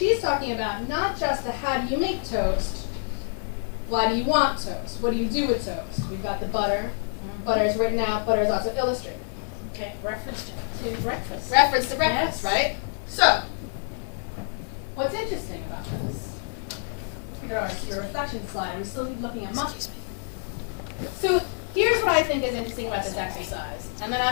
talking about not just the how do you make toast. Why do you want toast? What do you do with toast? We've got the butter. Butter is written out. Butter is also illustrated. Okay, reference to breakfast. Reference to breakfast, yes. right? So, what's interesting about this? Your reflection slide. We still keep looking at monkeys. So, here's what I think is interesting about this exercise. And then I'm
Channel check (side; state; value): right; silent; digital silence